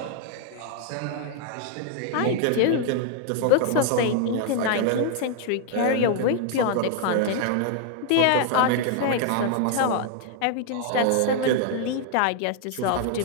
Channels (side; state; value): both; different; correlation 0.00